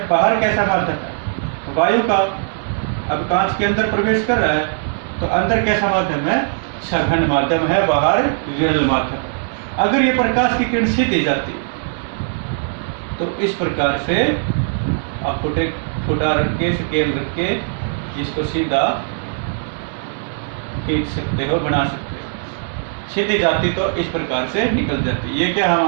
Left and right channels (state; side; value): silent; left; 66 dB below the other